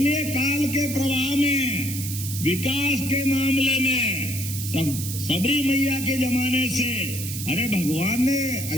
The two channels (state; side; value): noise; right; hiss, 7 dB below the sound